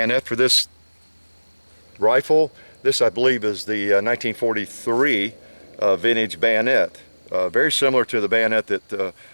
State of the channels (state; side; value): inverted; both; correlation -1.00